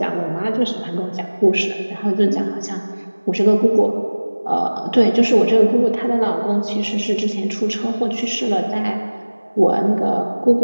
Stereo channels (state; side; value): inverted; both; correlation -1.00